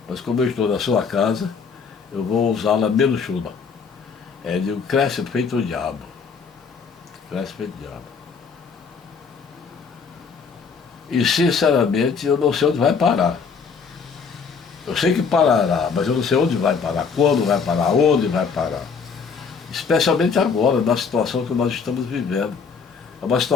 Mas como eu estou na sua casa, eu vou usá-la menos chula. Digo, cresce feito o diabo. Cresce feito o diabo. E sinceramente eu não sei onde vai parar. Eu sei que parará, mas eu não sei onde vai parar, quando vai parar, onde vai parar. Especialmente agora, na situação que nós estamos vivendo. É uma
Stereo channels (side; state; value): right; quieter; 5.6 dB